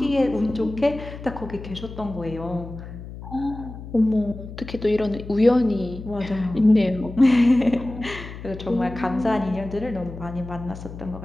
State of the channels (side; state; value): left; noise; hum, 12 dB below the sound